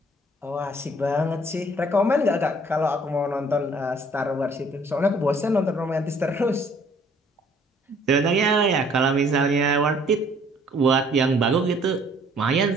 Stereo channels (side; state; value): both; normal; correlation 0.59